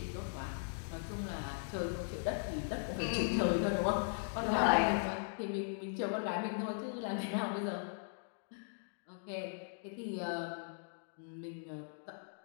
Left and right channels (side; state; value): right; silent; digital silence